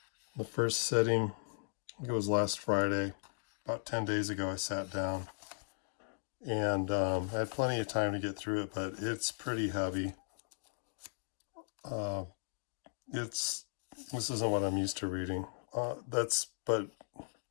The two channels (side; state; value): right; silent; digital silence